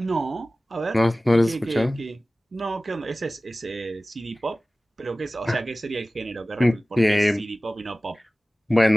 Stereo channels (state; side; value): normal; both; correlation 0.97